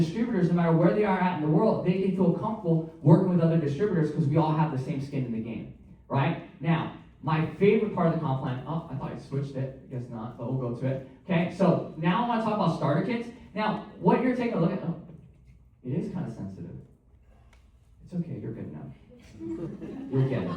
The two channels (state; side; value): identical; both; correlation 1.00